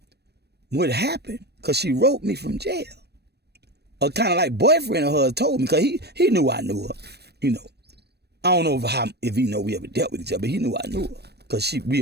what happened, because she wrote me from jail. A kind of like boyfriend of hers told me, because he knew I knew her, I don't know if he know we ever dealt with each other, but he knew I knew her, because we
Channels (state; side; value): late; left; 0.47 ms